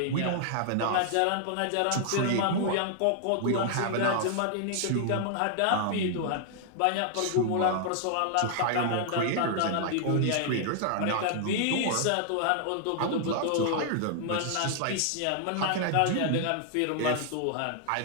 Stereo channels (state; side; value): different; both; correlation 0.00